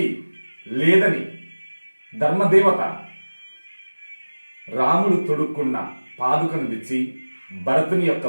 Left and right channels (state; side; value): inverted; both; correlation -1.00